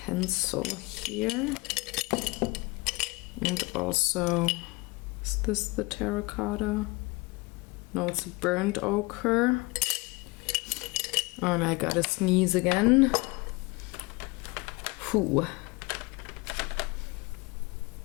here, and also, is this the terracotta? No, it's a burnt ochre. Oh, and I gotta sneeze again. Whew.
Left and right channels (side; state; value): right; quieter; 25.1 dB